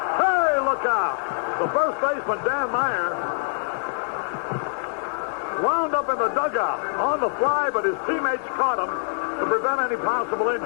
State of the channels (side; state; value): right; silent; 62 dB below the other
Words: look out. The first baseman, Dan Meyer, wound up in the dugout on the fly, but his teammates caught him to prevent any possible